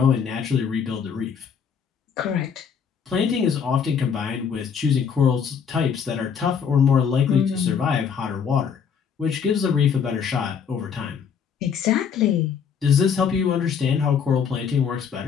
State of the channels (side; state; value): right; quieter; 6.9 dB